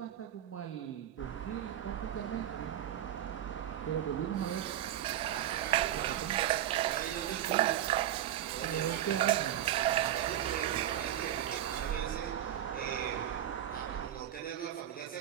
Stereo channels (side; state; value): left; quieter; 11.4 dB